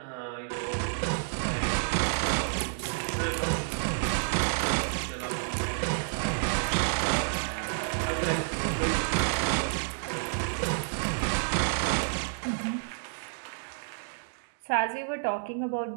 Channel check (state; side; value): silent; left; digital silence